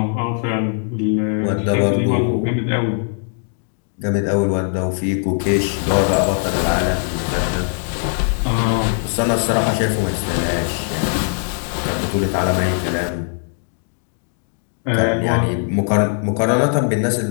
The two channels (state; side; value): silent; right; 63 dB below the other